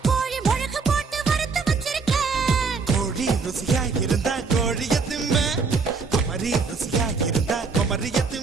கோழி மிளகு போட்டு வறுத்து வச்சிருக்க கோழி ருசியா இருந்தா கோழிய திம்ப குமரி ருசியா இருந்தா குமரிய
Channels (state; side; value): quieter; left; 4.7 dB